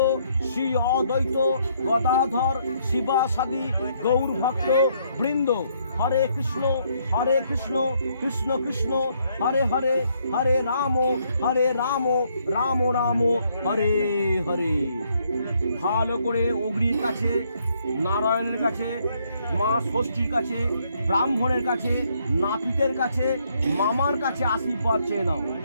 শ্রী অদ্বৈত গদাধর শিবাসাদি গৌর ভক্ত বৃন্দ। হরে কৃষ্ণ কৃষ্ণ কৃষ্ণ হরে হরে, হরে রাম রাম রাম হরে হরে। ভালো করে অগ্নির কাছে, নারায়ণের কাছে, মা ষষ্ঠীর কাছে, ব্রাহ্মণের কাছে, নাপিতের কাছে, মামার কাছে আশীর্বাদ চেয়ে নাও।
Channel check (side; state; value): both; inverted; correlation -0.71